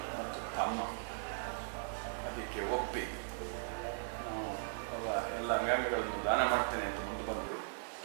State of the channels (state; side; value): silent; left; 52 dB below the other